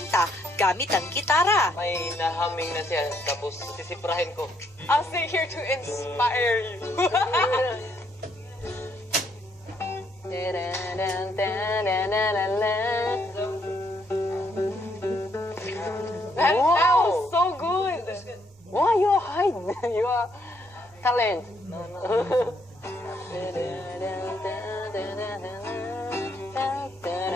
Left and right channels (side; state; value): both; normal; correlation 0.72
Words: gamit ang gitara. May nahaming na siya, tapos sisiprahin ko. I'll stay here to inspire you. That sounds so good. Why you hide? You are talent.